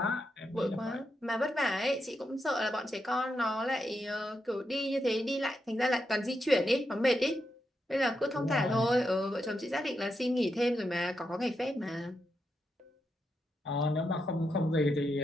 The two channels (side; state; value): both; normal; correlation 0.84